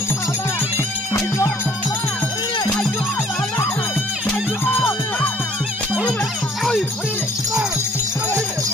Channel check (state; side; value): normal; both; correlation 0.58